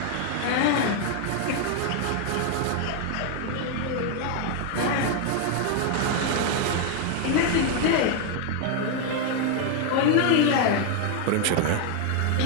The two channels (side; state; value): both; different; correlation 0.00